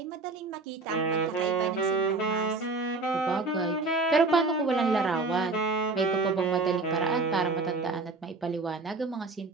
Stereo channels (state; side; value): quieter; left; 3.5 dB